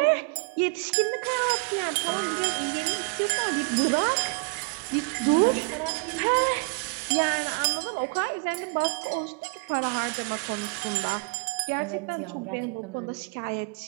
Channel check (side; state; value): left; quieter; 29.2 dB